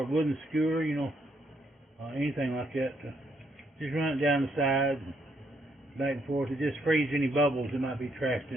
wooden skewer, anything like that. Just run it down the sides, back and forth. It just frees any bubbles that might be trapped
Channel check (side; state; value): both; normal; correlation 0.74